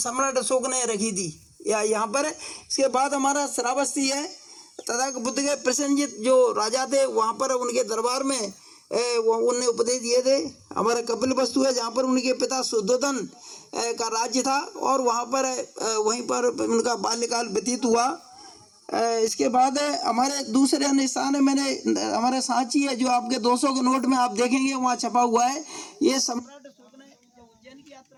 सम्राट अशोक ने रखी थी यहाँ पर। इसके बाद हमारा श्रावस्ती है, तथा बुद्ध के प्रसन्नजित जो राजा थे, वहाँ पर उनके दरबार में उनने उपदेश दिए थे। हमारा कपिलवस्तु है, जहाँ पर उनके पिता शुद्धोधन का राज्य था, और वहाँ पर वहीं पर उनका बाल्यकाल व्यतीत हुआ। इसके बाद हमारे दूसरे अन्य स्थान है, मैंने हमारा सांची है, जो आपके 200 के नोट में आप देखेंगे वहाँ छपा हुआ है। ये सम्राट अशोक ने जब उज्जैन की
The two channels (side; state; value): both; identical; correlation 1.00